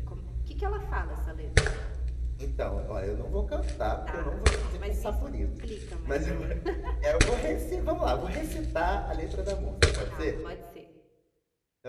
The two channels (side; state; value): both; identical; correlation 1.00